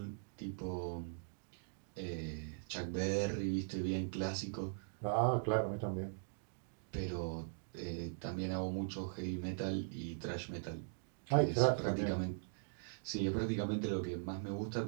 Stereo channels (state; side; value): silent; left; digital silence